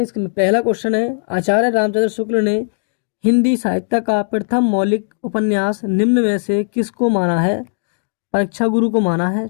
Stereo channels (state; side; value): silent; right; digital silence